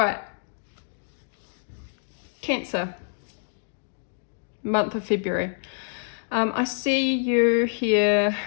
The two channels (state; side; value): silent; right; digital silence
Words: Cancer. Month of February. I see you here